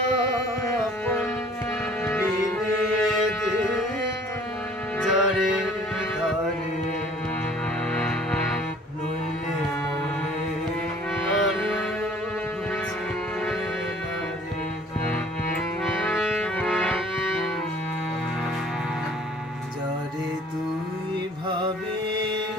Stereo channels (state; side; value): normal; both; correlation 0.52